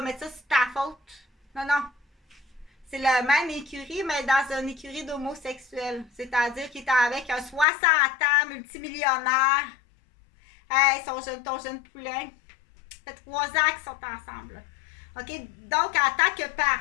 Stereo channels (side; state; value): right; drops out; at 7.7 s